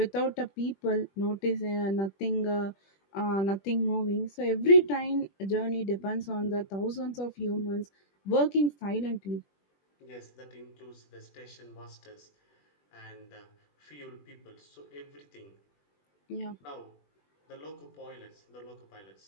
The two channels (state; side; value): late; right; 21 ms